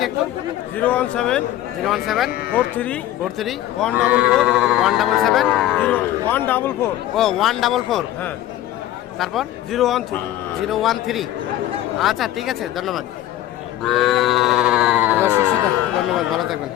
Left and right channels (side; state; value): right; quieter; 13.5 dB